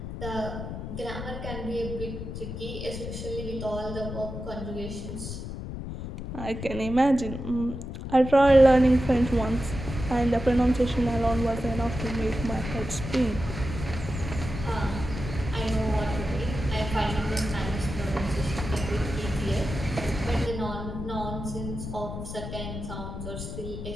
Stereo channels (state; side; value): noise; left; rumble, 7 dB below the sound